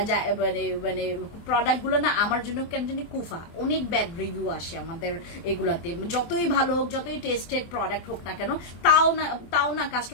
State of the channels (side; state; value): right; late; 24 ms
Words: মানে প্রোডাক্ট গুলো না আমার জন্য কেন জানি কুফা। অনেক ব্যাড রিভিউ আসে আমাদের এগুলাতে, যতই ভালো হোক, যতই টেস্টেড প্রোডাক্ট হোক না কেন, তাও না